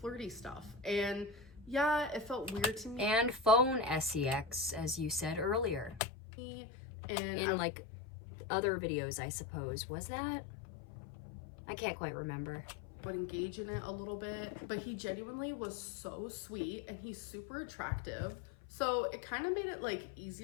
stuff, and yeah, it felt weird to me. And phone sex, as you said earlier. And in like other videos, I suppose. Was that? I can't quite remember. Would engage in it a little bit, but he genuinely was so sweet, and he's super attractive. So it kind of made it like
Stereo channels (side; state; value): right; drops out; at 6.0 s